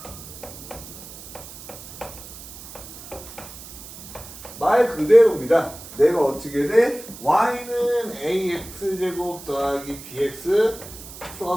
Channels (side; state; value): right; noise; hiss, 15 dB below the sound